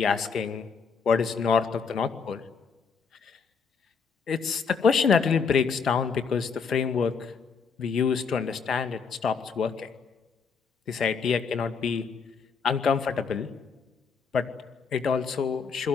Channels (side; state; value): right; quieter; 5.7 dB